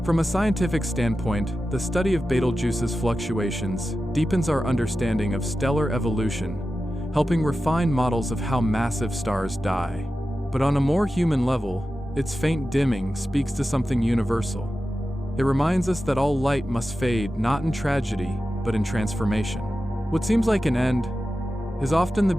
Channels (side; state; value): both; normal; correlation 0.93